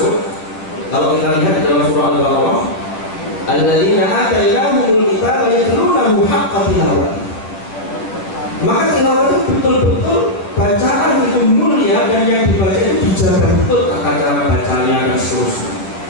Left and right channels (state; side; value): late; right; 10 ms